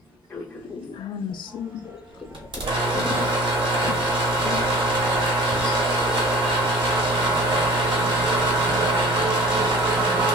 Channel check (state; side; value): normal; both; correlation 0.44